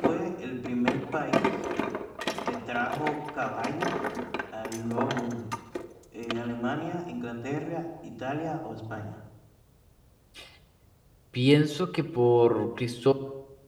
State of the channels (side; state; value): both; identical; correlation 1.00